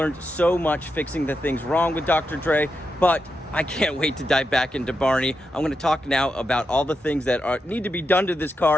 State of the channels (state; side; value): normal; both; correlation 0.86